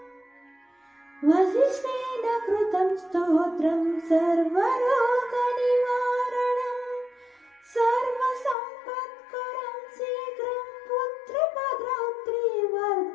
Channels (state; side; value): drops out; right; at 8.6 s